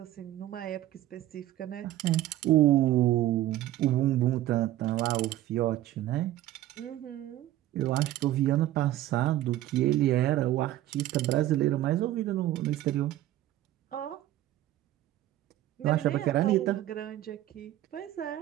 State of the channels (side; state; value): left; quieter; 14.2 dB